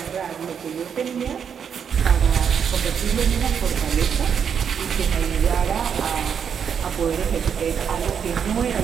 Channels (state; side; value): quieter; left; 7.4 dB